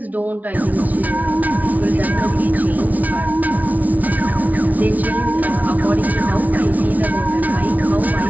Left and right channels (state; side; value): late; left; 0.074 ms